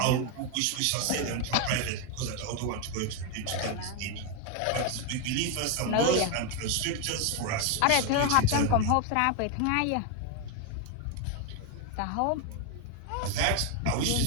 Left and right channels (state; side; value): different; both; correlation 0.01